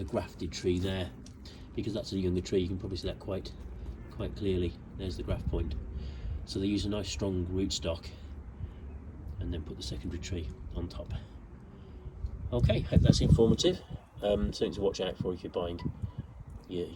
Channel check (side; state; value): both; identical; correlation 1.00